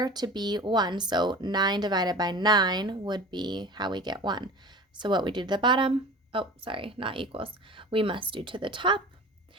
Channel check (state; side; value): normal; both; correlation 0.37